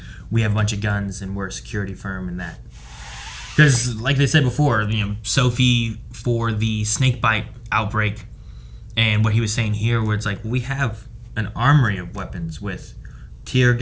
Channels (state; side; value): identical; both; correlation 1.00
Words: we have a bunch of guns and we're a security firm and that. Because, like they said before, Sophie for the snakebite outbreak, and what he was saying here, where it's like, we have an armory of weapons with tear